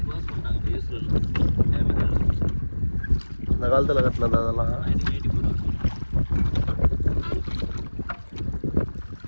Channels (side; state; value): both; inverted; correlation -1.00